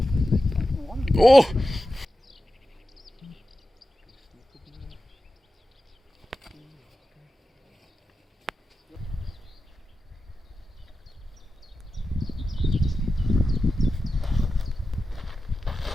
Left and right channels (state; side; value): normal; both; correlation 0.92